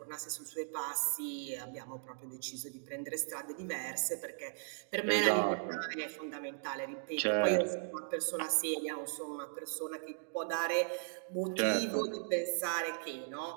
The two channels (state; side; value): silent; left; digital silence